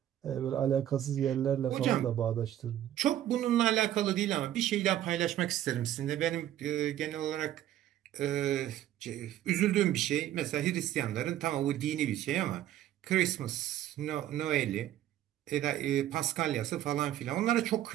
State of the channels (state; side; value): quieter; left; 12.3 dB